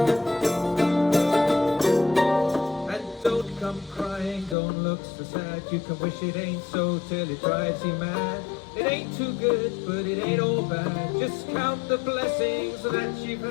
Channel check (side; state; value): right; drops out; at 4.5 s